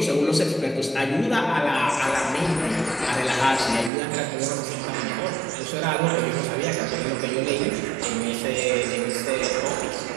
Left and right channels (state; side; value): drops out; left; at 3.9 s